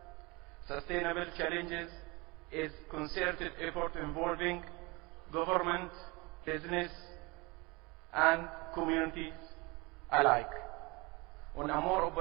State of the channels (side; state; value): left; quieter; 25.9 dB